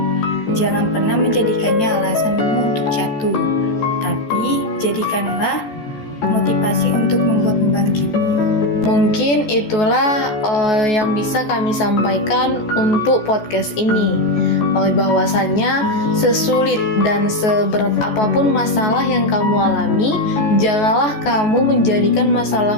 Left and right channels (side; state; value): right; late; 14 ms